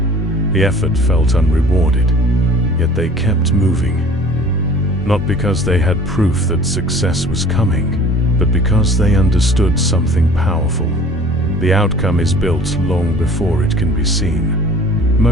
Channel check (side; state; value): both; normal; correlation 0.48